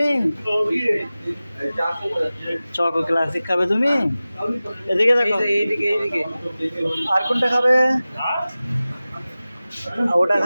চকো ক্লাসিক খাবে তুমি? এদিকে দেখো, এইদিকে এইদিকে। আর কোনটা খাবে? ওটা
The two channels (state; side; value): inverted; both; correlation -0.97